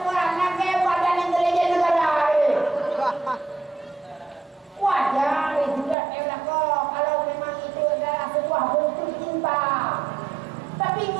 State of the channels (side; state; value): left; drops out; at 6.0 s